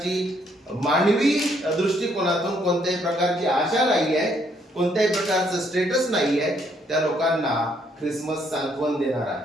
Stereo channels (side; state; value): both; normal; correlation 0.70